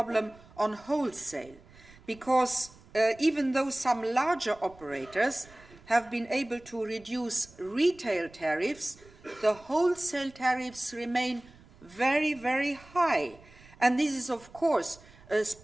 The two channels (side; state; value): right; noise; rumble, 24 dB below the sound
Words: on wholesale, because even though some larger operators have been able to reduce retail tariffs, the wholesale tariffs remain very, very high. And this is, of course, a